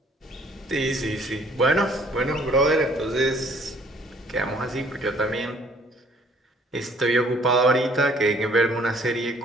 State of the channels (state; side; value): normal; both; correlation 0.59